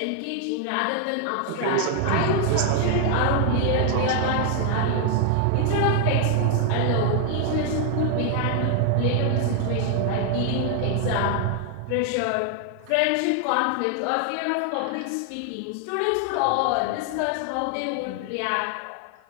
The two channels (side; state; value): both; different; correlation 0.00